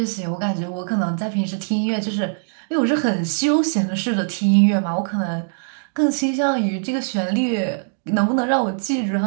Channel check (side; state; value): left; silent; digital silence